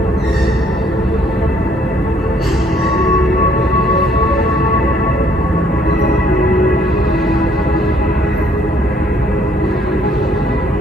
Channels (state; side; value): normal; both; correlation 0.64